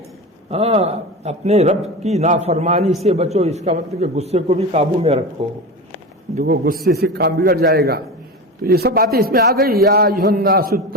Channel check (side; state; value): both; normal; correlation 0.25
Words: اپنے رب کی نافرمانی سے بچو، اس کا مطلب کہ غصے کو بھی قابو میں رکھو، دیکھو غصے سے کام بگڑ جائے گا۔ تو یہ سب باتیں اس میں آ گئی، یا ایھا الناس